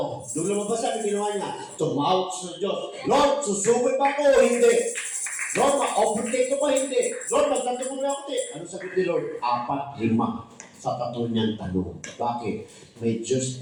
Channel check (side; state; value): both; identical; correlation 1.00